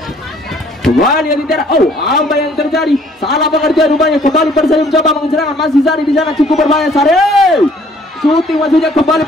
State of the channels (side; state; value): both; normal; correlation 0.59